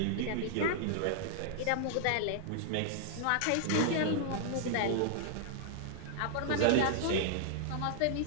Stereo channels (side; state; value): both; different; correlation 0.00